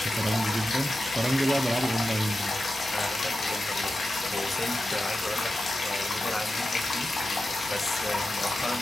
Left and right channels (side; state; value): both; normal; correlation 0.91